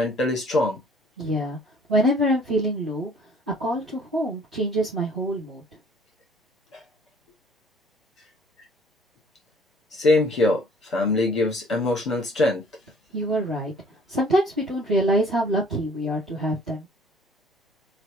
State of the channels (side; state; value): both; normal; correlation 0.55